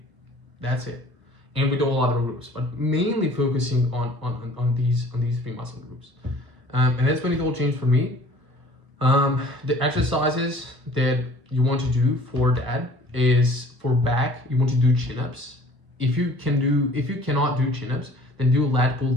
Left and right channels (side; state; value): left; late; 1.0 ms